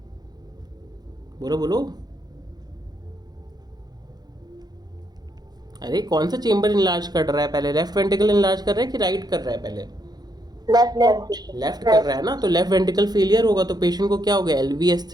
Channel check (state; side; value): late; left; 0.19 ms